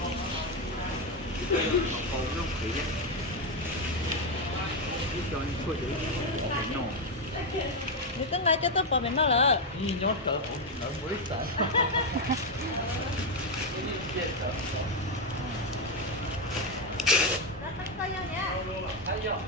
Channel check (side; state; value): both; normal; correlation 0.06